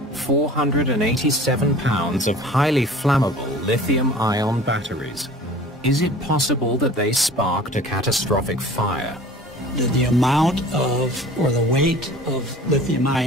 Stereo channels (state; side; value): normal; both; correlation 0.44